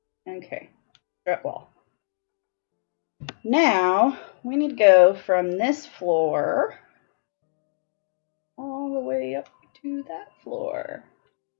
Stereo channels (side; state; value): right; silent; digital silence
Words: Okay, strut wall. Now, we need to go from this floor all the way up to that floor.